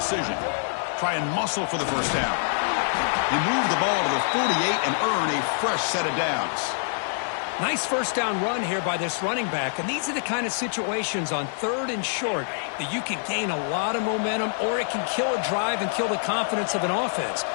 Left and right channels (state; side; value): silent; right; 61 dB below the other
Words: Try and muscle for the first down. They move the ball to the 48 and earn a fresh set of downs. Nice 1st down run here by this running back, and these are the kind of situations on 3rd and short that you can gain a lot of momentum, or it can kill a drive and kill the confidence of an offense.